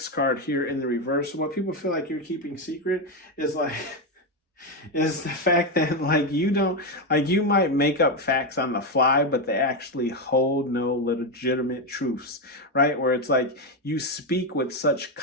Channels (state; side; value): normal; both; correlation 0.08